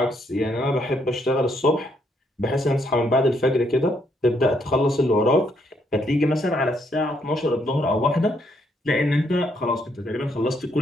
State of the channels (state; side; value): normal; both; correlation 0.73